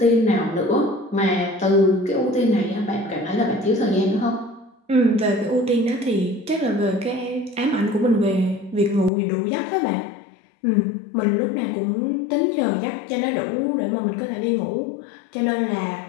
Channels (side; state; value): right; drops out; at 9.1 s